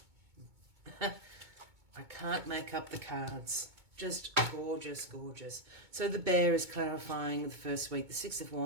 I can't make up the cards. Just gorgeous, gorgeous. So the Bear is clarifying the first week, the Six of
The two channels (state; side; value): late; left; 2.2 ms